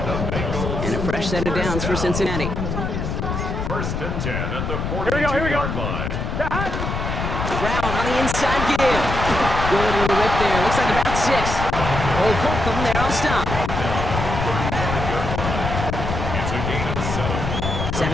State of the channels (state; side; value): noise; left; rumble, 3 dB below the sound